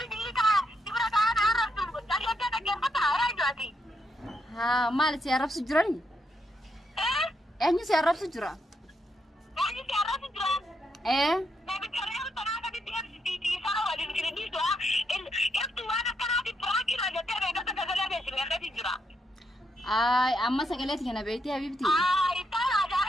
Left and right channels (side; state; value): both; normal; correlation 0.79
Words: हाँ माल से अरब से जुड़ा नहीं ऐनी से अरब से जुड़ा ay amma sagalet kana beyti habibti